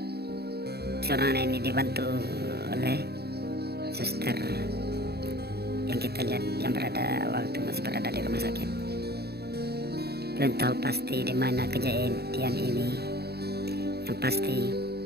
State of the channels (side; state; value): left; late; 0.47 ms